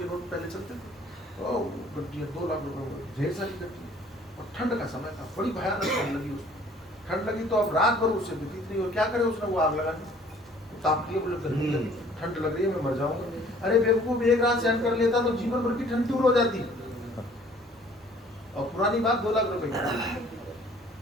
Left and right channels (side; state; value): both; normal; correlation 0.55